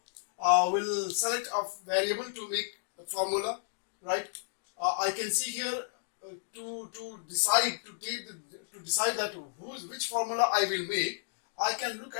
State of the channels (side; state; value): right; silent; digital silence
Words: we'll select a variable to make a formula, right? I can see here to decide that which formula I will make. I can look